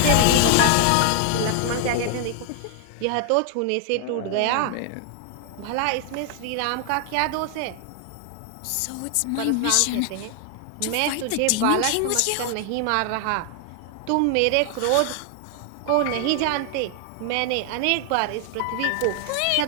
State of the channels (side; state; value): both; different; correlation 0.00